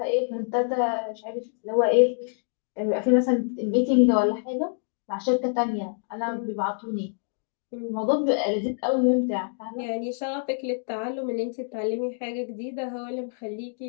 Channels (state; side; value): silent; right; digital silence